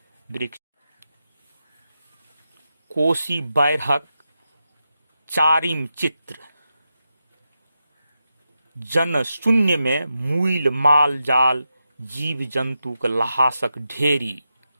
वृक्ष कोसी बाढ़िक चारिम चित्र। जन शून्य में मूल माल जाल, जीव जंतुक ल्हासक ढेरी।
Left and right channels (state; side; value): inverted; both; correlation -0.89